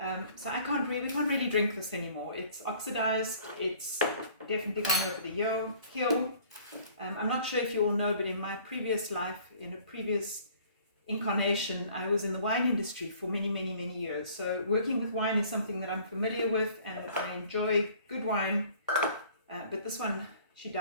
So we can't really drink this anymore. It's oxidized, it's definitely gone over the hill. I'm not sure if you all know, but in my previous life, in a previous incarnation, I was in the wine industry for many years. So working with wine is something that I'm familiar with, and I enjoy good wine. But this one, she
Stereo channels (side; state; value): both; inverted; correlation -0.54